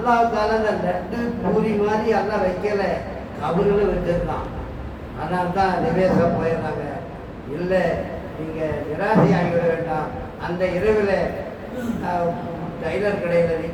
அந்த லட்டு பூரி மாதிரி எல்லாம் வைக்கல, கபறுகளை வச்சிருக்கான். அதனால தான் நிவேசம் போயிடுறாங்க. இல்லை நீங்கள் நிராசை ஆகிவிட வேண்டாம். அந்த இரவில் டைலர் கடையில்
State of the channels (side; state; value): both; identical; correlation 1.00